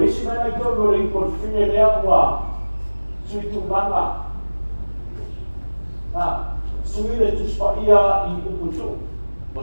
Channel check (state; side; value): inverted; both; correlation -1.00